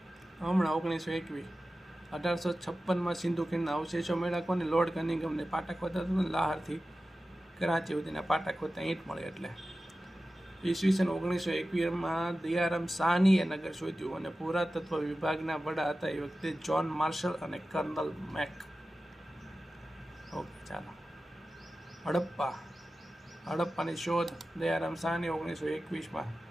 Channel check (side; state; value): both; normal; correlation 0.94